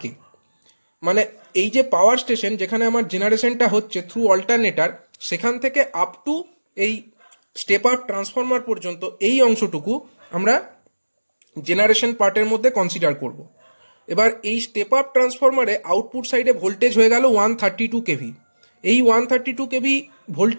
মানে এই যে পাওয়ার স্টেশন যেখানে আমার জেনারেশনটা হচ্ছে থ্রু অল্টারনেটর, সেখান থেকে আপ টু এই স্টেপ আপ ট্রান্সফরমার পর্যন্ত এই অংশটুকু আমরা জেনারেশন পার্টের মধ্যে কনসিডার করব। এবার এই স্টেপ আপ ট্রান্সফরমারে আউটপুট সাইডে ভোল্টেজ হয়ে গেল 132 কেভি। এই 132 কেভি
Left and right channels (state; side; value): inverted; both; correlation -1.00